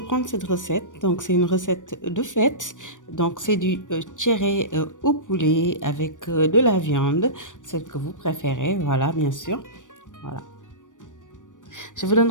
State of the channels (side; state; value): right; late; 0.87 ms